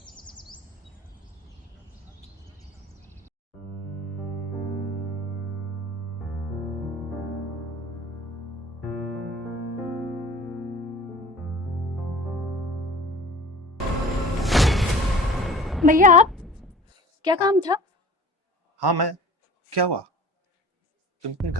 भैया आप, क्या काम था? हाँ मैं, क्या हुआ? तुम इतनी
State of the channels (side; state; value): both; normal; correlation 0.43